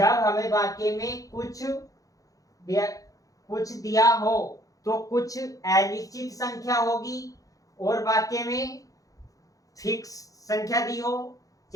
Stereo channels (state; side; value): late; right; 0.17 ms